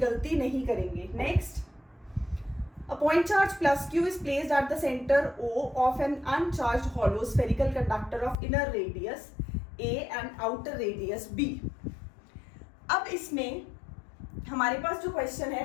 गलती नहीं करेंगे। Next, a point charge plus Q is placed at the center O of an uncharged hollow spherical conductor of inner radius A and outer radius B। अब इसमें हमारे पास जो क्वेश्चन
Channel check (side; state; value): right; drops out; at 8.3 s